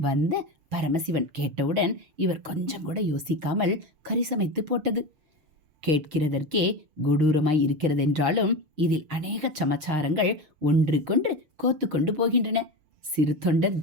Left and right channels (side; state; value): left; late; 6.6 ms